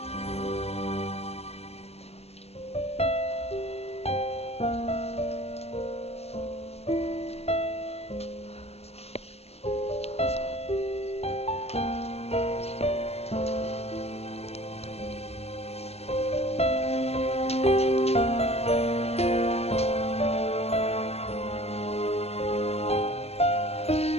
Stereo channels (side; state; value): right; late; 0.30 ms